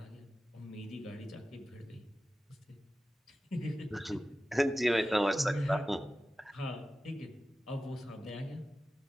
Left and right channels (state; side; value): normal; both; correlation 0.94